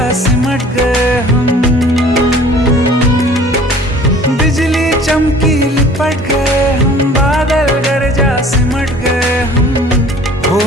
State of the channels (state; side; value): normal; both; correlation 0.49